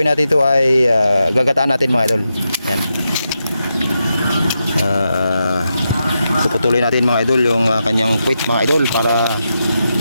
natin ito ay gagataan natin mga idol. Yan. Puputuloy natin mga idol yung kanyang puwit mga idol para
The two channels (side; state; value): both; inverted; correlation -0.87